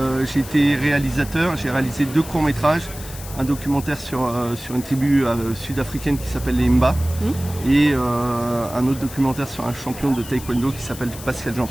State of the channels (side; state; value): left; noise; hiss, 14 dB below the sound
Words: J'ai été réalisateur, j'ai réalisé 2 courts-métrages, un documentaire sur une tribu sud-africaine qui s'appelle les Mba, et un autre documentaire sur un champion de taekwondo qui s'appelle Pascal